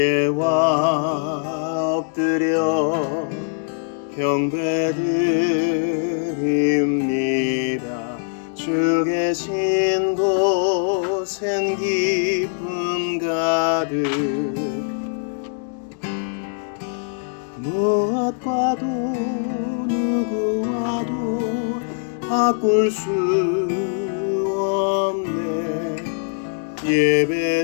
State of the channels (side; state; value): right; silent; digital silence